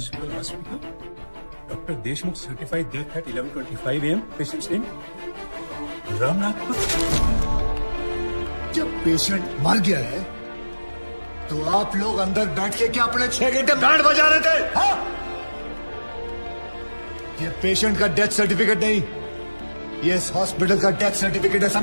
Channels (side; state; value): both; inverted; correlation -1.00